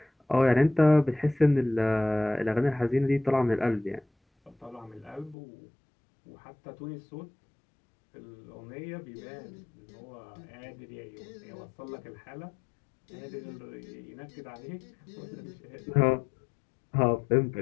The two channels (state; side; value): drops out; right; at 5.4 s